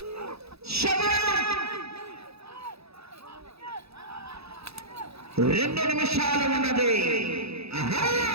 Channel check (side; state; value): left; late; 0.78 ms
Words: 2 నిమిషాలు ఉన్నది.